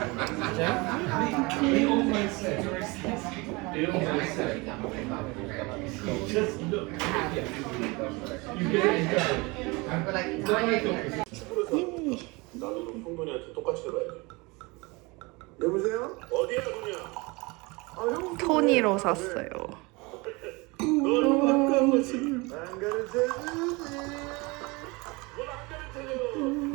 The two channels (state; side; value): quieter; left; 25.7 dB